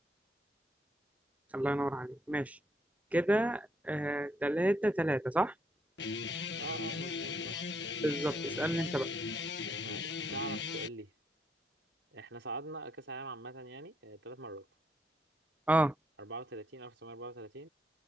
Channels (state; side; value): normal; both; correlation 0.74